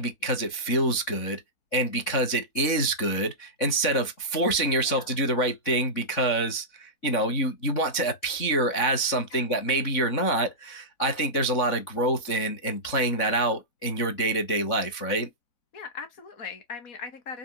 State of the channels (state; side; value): late; right; 3.6 ms